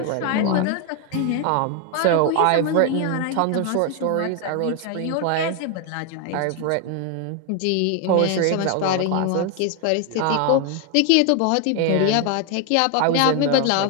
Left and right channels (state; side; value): different; both; correlation 0.01